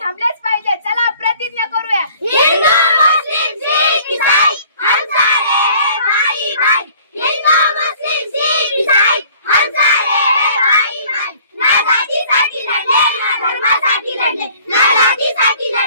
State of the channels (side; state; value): both; inverted; correlation -0.53